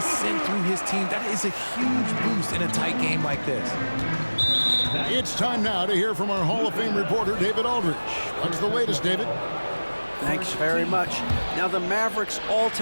sent through his team. That is a huge boost in a tight game like this. It's time now to hear from our Hall of Fame reporter, David Aldridge. What's the latest, David? Thanks very much. Now, the Mavericks'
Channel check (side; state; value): both; inverted; correlation -1.00